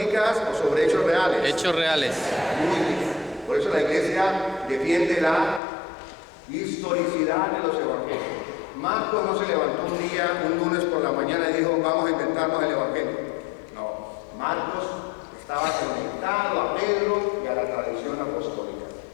o sobre hechos reales? Hechos reales. Muy bien. Por eso la Iglesia defiende la historicidad de los evangelios. Marcos no se levantó un lunes por la mañana y dijo: vamos a inventarnos el evangelio. No, Marcos estaba conectado a Pedro y a la tradición apostólica.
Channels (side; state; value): right; drops out; at 5.6 s